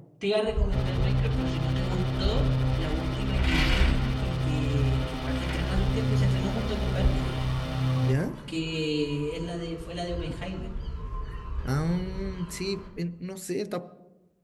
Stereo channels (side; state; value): both; identical; correlation 1.00